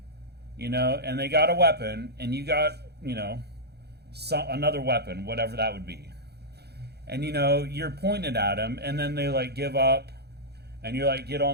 and they got a weapon, and you got, another weapon, whatever that would be, and you're pointed at them, and then they like give up. And you're like, get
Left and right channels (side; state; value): left; late; 0.48 ms